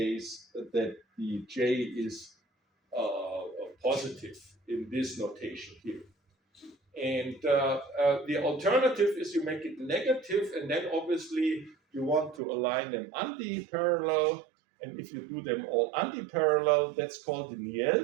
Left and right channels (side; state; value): left; drops out; at 12.4 s